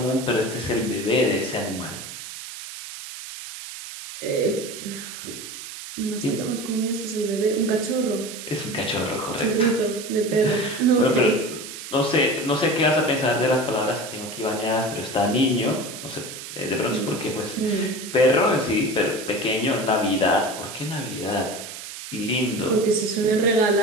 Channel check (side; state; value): right; noise; hiss, 11 dB below the sound